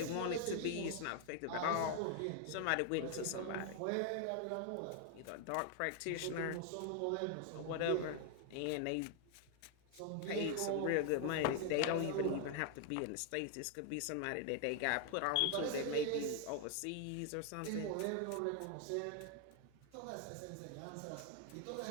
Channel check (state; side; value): different; both; correlation 0.00